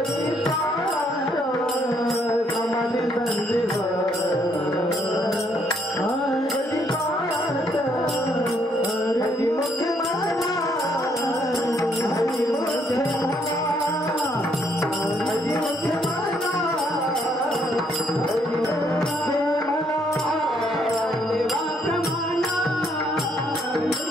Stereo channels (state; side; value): normal; both; correlation 0.70